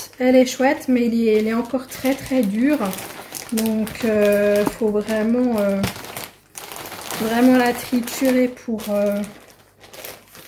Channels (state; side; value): identical; both; correlation 1.00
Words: mais elle est encore très très dure. Donc faut vraiment la triturer pour